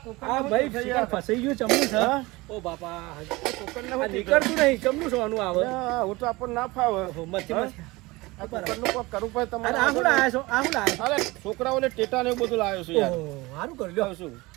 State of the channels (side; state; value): left; quieter; 22.0 dB